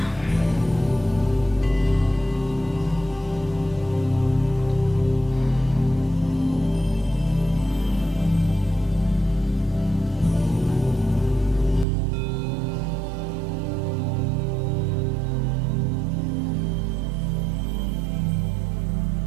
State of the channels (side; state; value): left; drops out; at 11.9 s